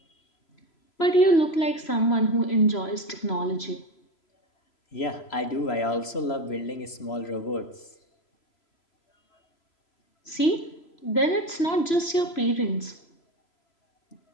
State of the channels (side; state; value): right; late; 3.0 ms